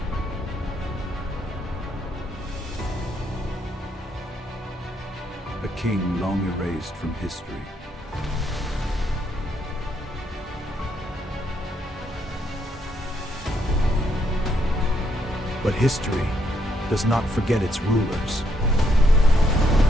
A king long erased from history. But history does not forget its rulers.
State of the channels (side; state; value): both; normal; correlation 0.75